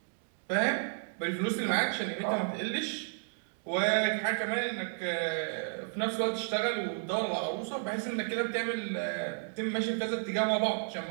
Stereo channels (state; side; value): silent; left; 56 dB below the other